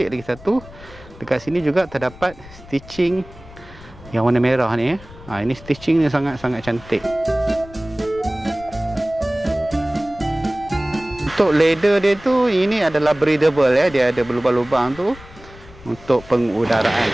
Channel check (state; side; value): noise; left; rumble, 19 dB below the sound